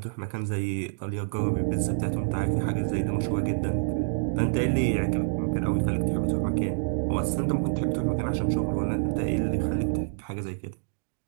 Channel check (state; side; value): silent; left; digital silence